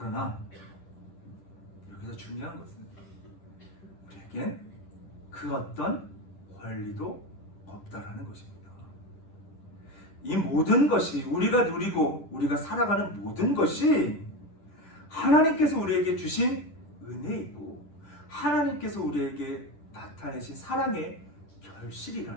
여기서 중요한 것은 우리에겐 그 어떤 권리도 없다라는 것입니다. 이 모든 것이 우리가 누리고 우리가 살아가는 모든 것이 하나님께서 우리에게 주신 은혜이고 하나님께서 우리에게 나타내신 사랑의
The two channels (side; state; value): right; late; 10 ms